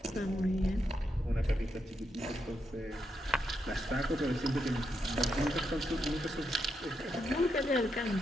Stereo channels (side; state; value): both; normal; correlation 0.82